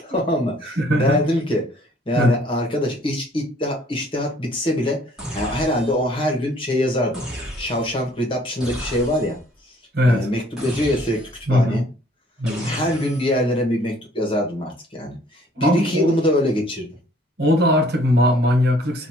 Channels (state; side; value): normal; both; correlation 0.59